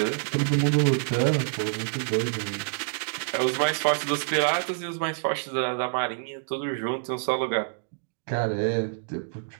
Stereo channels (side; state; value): left; silent; digital silence